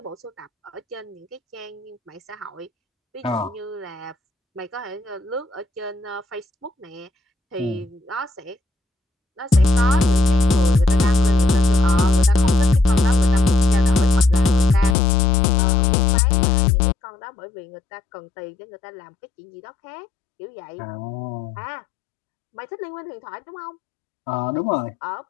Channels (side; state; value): right; drops out; at 15.0 s